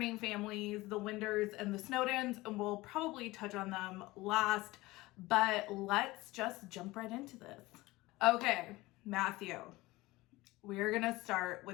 families, the Winders and the Snowdens, and we'll probably touch on them last, but let's just jump right into this. Okay, Matthew, we're gonna start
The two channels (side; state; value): right; quieter; 20.0 dB